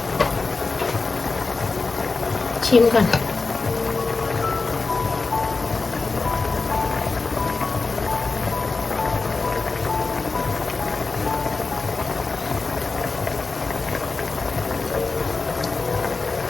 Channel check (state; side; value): quieter; right; 3.9 dB